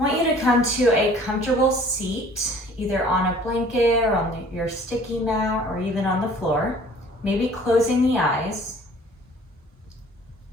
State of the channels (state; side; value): normal; both; correlation 0.51